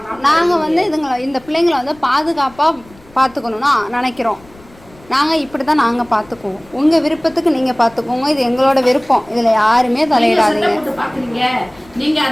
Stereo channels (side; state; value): left; noise; rumble, 26 dB below the sound